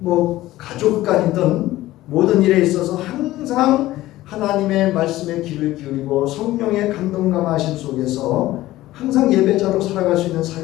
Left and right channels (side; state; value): right; quieter; 16.2 dB